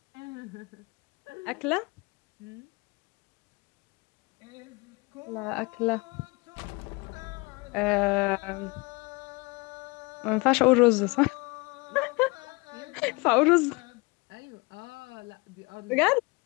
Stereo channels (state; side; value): quieter; right; 26.7 dB